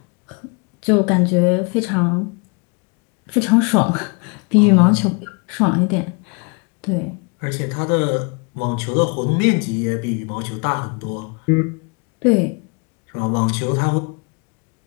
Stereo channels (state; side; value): quieter; right; 33.2 dB